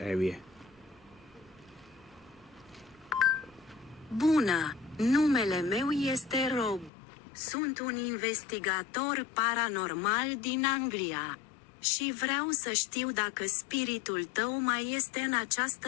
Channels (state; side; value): drops out; right; at 6.9 s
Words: Bună, numele meu este Rob. Sunt un investigator paranormal din Anglia. Și vreau să știu dacă spiritul tău mai este în